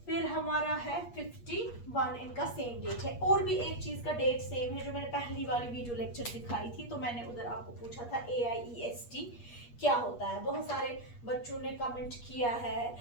फिर हमारा है 51, इनका सेम डेट है। और भी एक चीज का डेट सेम है जो मैंने पहली वाली वीडियो लेक्चर दिखाई थी, तो मैंने उधर आपको पूछा था AIEST क्या होता है। बहुत सारे बच्चों ने कमेंट किया है,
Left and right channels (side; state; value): right; late; 8.4 ms